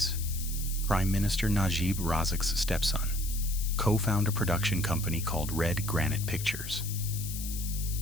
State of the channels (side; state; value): left; noise; hiss, 8 dB below the sound